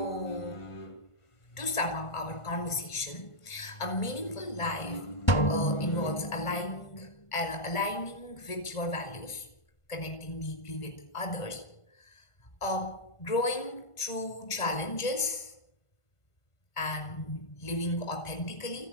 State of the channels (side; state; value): right; late; 1.5 ms